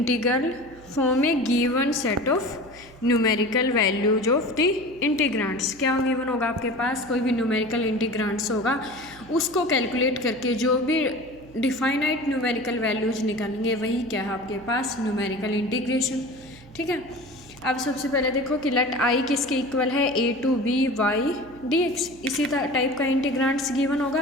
form a given set of numerical values of the integrands. क्या गिवन होगा आपके पास? कोई भी न्यूमेरिकल इंटीग्रांड्स होगा, उसको कैलकुलेट करके जो भी डिफाइनाइट न्यूमेरिकल वैल्यूज निकालेंगे, वही क्या है आपके पास? Numerical integration. ठीक है, अब सबसे पहले देखो कि लेट आई किसके इक्वल है? A to B Y D X. इसी टाइप का इंटीग्रांड्स गिवन होगा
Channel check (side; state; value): right; noise; hum, 23 dB below the sound